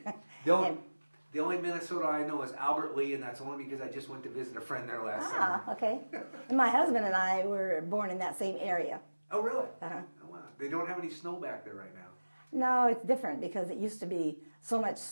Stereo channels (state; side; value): inverted; both; correlation -1.00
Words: The only Minnesota I know is Albert Lee, and that's only because I just went to visit a friend there last summer. Okay. And my husband and I were born in that same area. Oh, really? Uh-huh. Oh, wow. They don't have any snow back there right now. No, it's different because it used to be so much